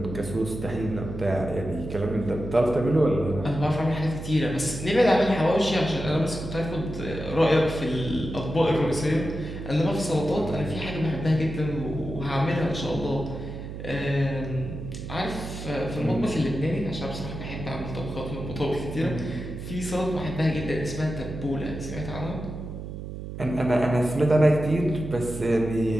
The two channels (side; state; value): right; noise; hum, 9 dB below the sound